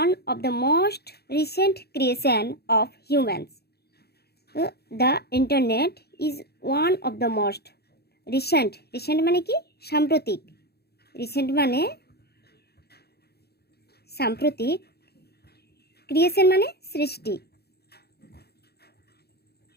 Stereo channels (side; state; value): right; late; 0.47 ms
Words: of the most recent creation of humans. The internet is one of the most recent মানে কি? সাম্প্রতিক। রিসেন্ট মানে সাম্প্রতিক, ক্রিয়েশন মানে সৃষ্টি,